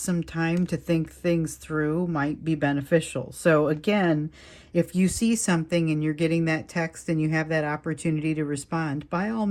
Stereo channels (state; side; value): identical; both; correlation 1.00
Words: time to think things through might be beneficial. So again, if you see something and you're getting that text and you have that opportunity to respond, by all